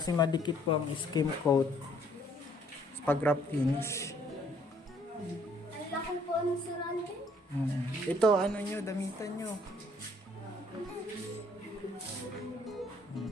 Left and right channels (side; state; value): both; normal; correlation 0.63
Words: madikit po ang skim coat pag wrap finish. Ang lakong po ng Sir Alvin. Ito, nyo, damitan nyo.